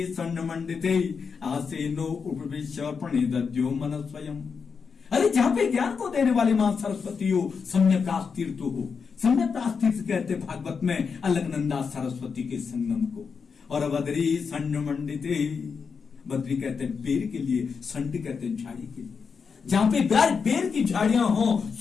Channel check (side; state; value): right; quieter; 5.7 dB